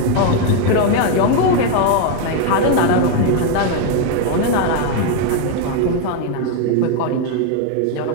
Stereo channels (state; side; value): different; both; correlation 0.01